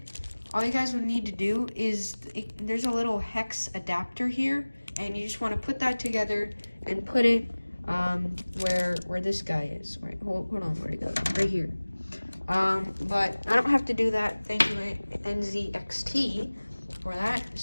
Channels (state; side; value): inverted; both; correlation -1.00